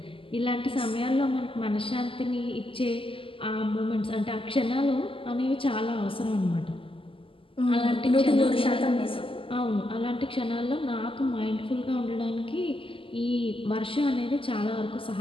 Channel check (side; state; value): right; late; 0.26 ms